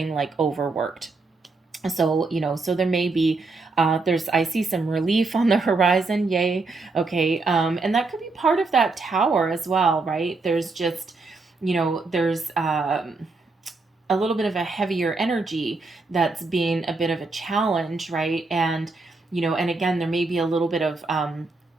like overworked. So there may be, I see some relief on the horizon, yay, okay? And that could be part of that tower as well, right? There's just, there's, a little bit of a heavier energy that's being a bit of a challenge, right? And again, there may be a little bit of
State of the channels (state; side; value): quieter; left; 3.7 dB